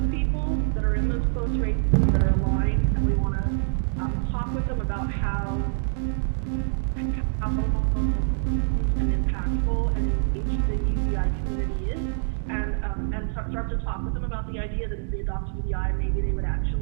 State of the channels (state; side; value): silent; left; digital silence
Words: people that are in those close races that are aligned, and we want to talk with them about how and impactful and engaged the UBI community is, and start to talk with them about the idea that if they adopt UBI, maybe they would